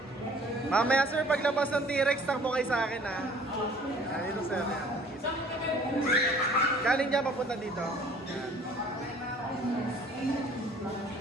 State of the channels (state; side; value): normal; both; correlation 0.53